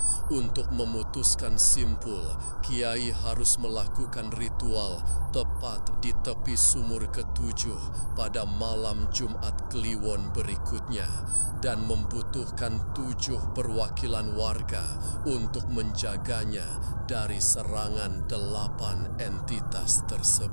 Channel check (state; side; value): inverted; both; correlation -1.00